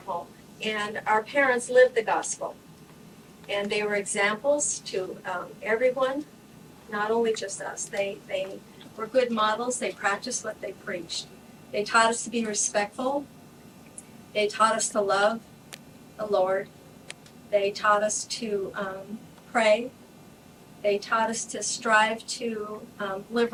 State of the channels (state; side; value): identical; both; correlation 1.00